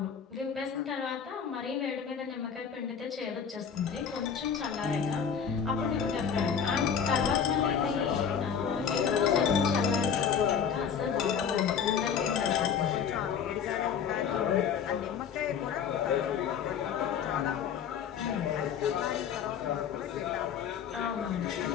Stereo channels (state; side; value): quieter; right; 7.4 dB